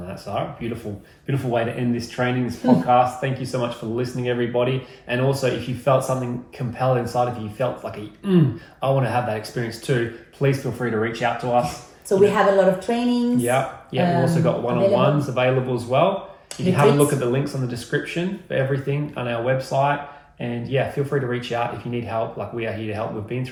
that, Sarah. Beautiful way to end this training, this podcast. Thank you so much for listening, everybody. And also, if you felt something compelled inside of you, you felt like I want to have that experience too, please feel free to reach out to us. So we have a lot of trainings. Yeah. We've also got one-on-ones available as well. You can have a look at the links on the description for everything on our website. And yeah, feel free to reach out if you need help. Like, we are here to help. We've been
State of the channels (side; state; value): both; identical; correlation 1.00